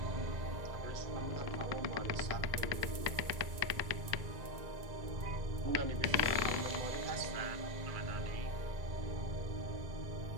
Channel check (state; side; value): late; left; 1.9 ms